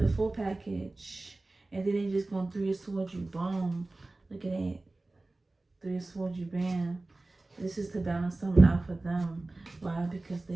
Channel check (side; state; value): left; quieter; 3.0 dB